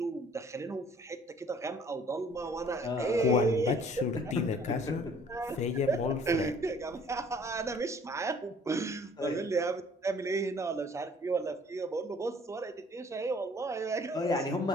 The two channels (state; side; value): normal; both; correlation 0.56